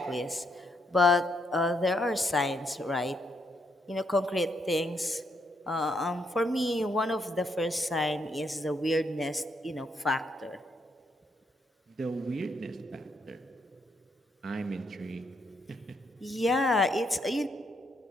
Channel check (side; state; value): both; normal; correlation 0.76